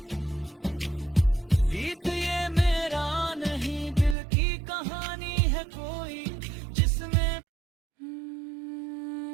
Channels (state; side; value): drops out; left; at 4.2 s